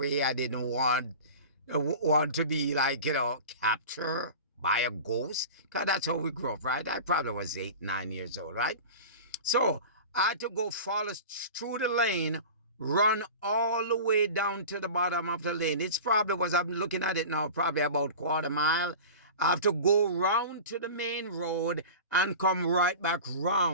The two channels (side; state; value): both; inverted; correlation -0.34